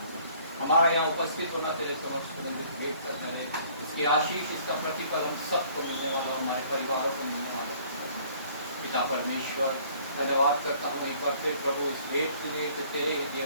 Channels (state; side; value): inverted; both; correlation -0.57